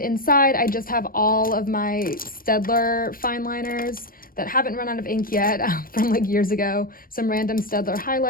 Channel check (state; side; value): late; right; 0.41 ms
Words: I just have all of my Staedtler fineliners that haven't run out of ink yet from like years ago, some random Staedtler